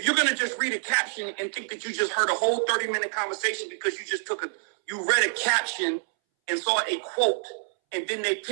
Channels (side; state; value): left; silent; 60 dB below the other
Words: you're going to just read a caption and think that you just heard a whole 30-minute conversation because you read a caption and saw a quote, and then they